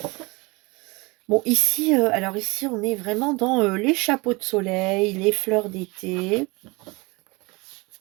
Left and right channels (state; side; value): quieter; left; 25.5 dB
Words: bon ici, alors ici on est vraiment dans les chapeaux de soleil, les fleurs d'été.